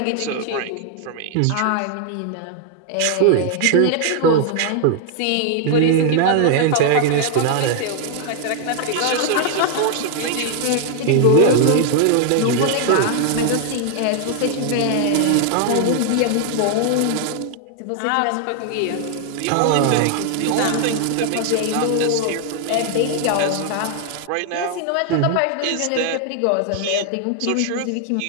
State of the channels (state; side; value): different; both; correlation 0.00